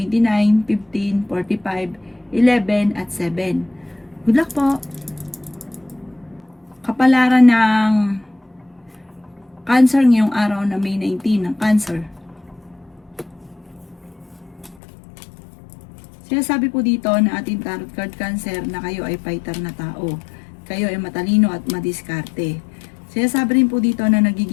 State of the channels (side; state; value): right; drops out; at 14.8 s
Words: 15, 45, 11, at 7. Good luck po! Kapalaran ng Cancer ngayong araw na May 19 ng Cancer. Sinasabi po dito na ating tarot card Cancer na kayo ay fighter na tao. Kayo ay matalino at madiskarte. Sinasabi rin po dito na